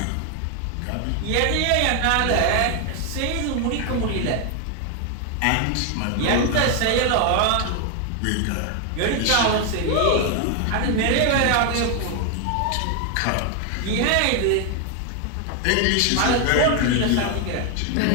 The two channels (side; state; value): both; different; correlation 0.01